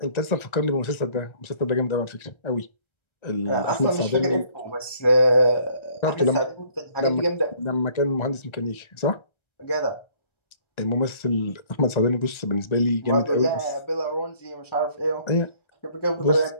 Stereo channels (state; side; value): late; right; 1.3 ms